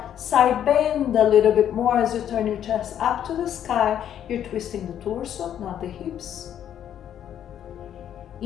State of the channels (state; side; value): quieter; right; 10.0 dB